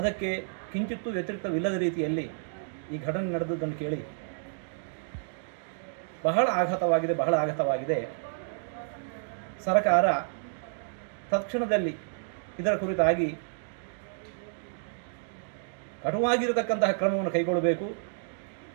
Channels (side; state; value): left; silent; digital silence